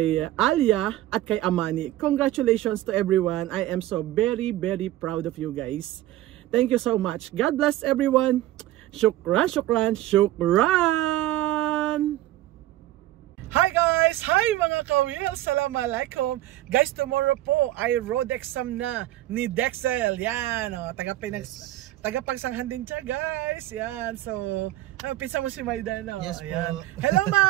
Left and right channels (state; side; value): quieter; left; 15.1 dB